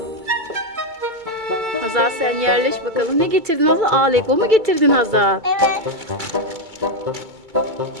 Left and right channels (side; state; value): left; late; 2.2 ms